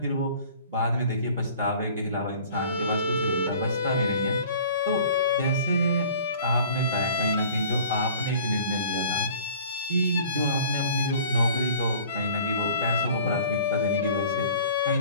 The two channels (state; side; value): inverted; both; correlation -0.48